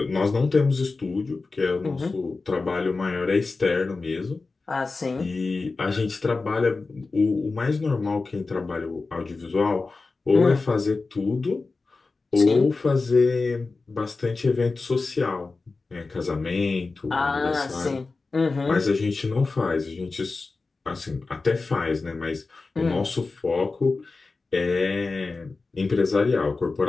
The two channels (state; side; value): quieter; right; 3.9 dB